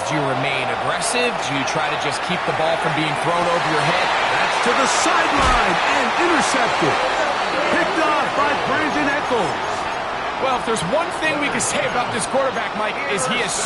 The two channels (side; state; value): both; identical; correlation 1.00